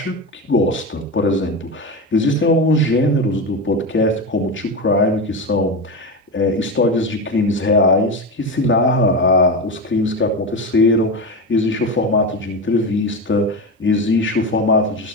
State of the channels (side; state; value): both; normal; correlation 0.20